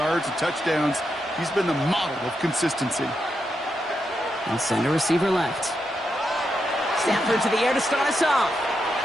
and touchdowns. He's been the model of consistency. And center receiver left. Stafford to the air to start us off.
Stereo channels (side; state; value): both; normal; correlation 0.84